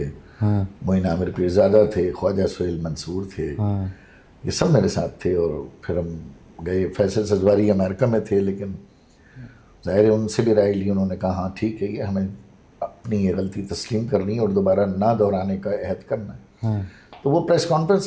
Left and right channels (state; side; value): identical; both; correlation 1.00